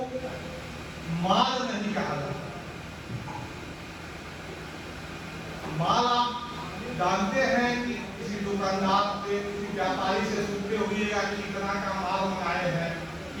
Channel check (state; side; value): identical; both; correlation 1.00